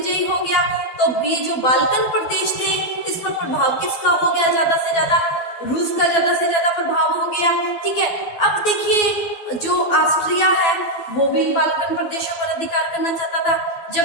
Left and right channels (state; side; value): late; right; 12 ms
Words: हो गया तो ये जो बाल्कन प्रदेश थे इस पर प्रभाव किसका हो गया? ज्यादा से ज्यादा रूस का ज्यादा से ज्यादा प्रभाव हो गया। ठीक है। अब देखिए, जो ऑस्ट्रिया है वो भी इन बाल्कन प्रदेशों पर अधिकार करना चाहता था,